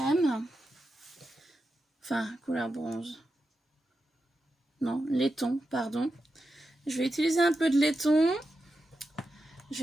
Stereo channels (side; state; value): both; normal; correlation 0.89